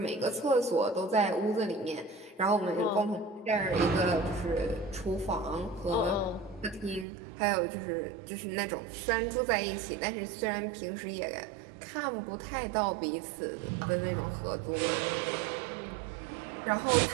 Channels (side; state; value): left; drops out; at 7.1 s